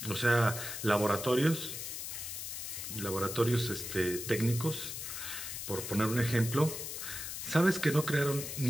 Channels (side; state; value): left; noise; hiss, 6 dB below the sound